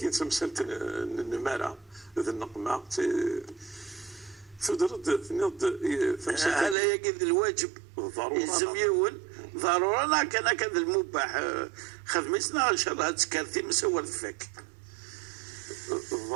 تمثلت النمارة ذا النقمة تدرد نض هذا يجد الواجب يلزم يول ضروري انا كان كذا المباح خدمتنا ان شاء الله تكرتي مسول فيك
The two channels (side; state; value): left; drops out; at 6.8 s